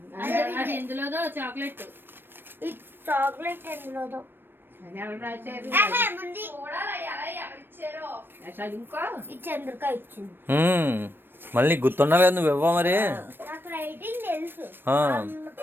అది ఎందులోదో చాక్లెట్. ఈ చాక్లెట్ ఎందులోదో ఈ చంద్రిక ఇచ్చింది. మళ్ళీ గుర్తుండాలి కదా, నువ్వు ఇవ్వ మరి. నాకు రైటింగ్ తెలుసు,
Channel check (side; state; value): left; late; 0.097 ms